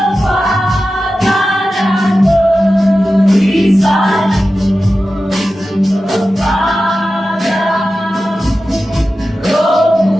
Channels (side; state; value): both; normal; correlation 0.93